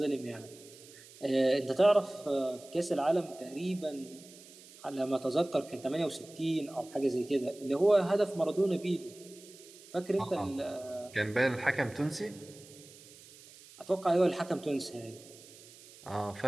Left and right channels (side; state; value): right; noise; hiss, 21 dB below the sound